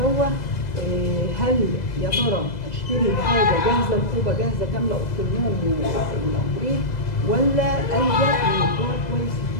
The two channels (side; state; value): right; late; 2.0 ms